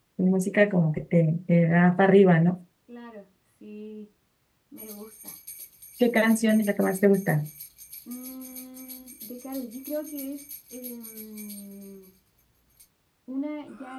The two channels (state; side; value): identical; both; correlation 1.00